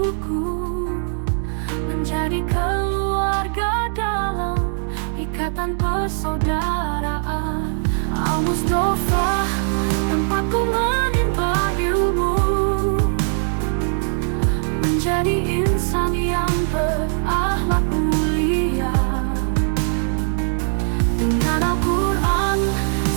menjadi keluarga dalam ikatan persaudaraan. Al-Mustafa tempatku menimba ilmu, menjadi insan yang berakhlak mulia, dengan Al-Quran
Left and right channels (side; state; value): left; silent; digital silence